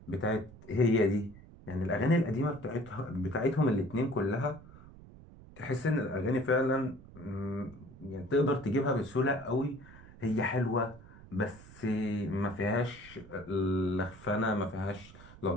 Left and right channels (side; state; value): right; noise; rumble, 19 dB below the sound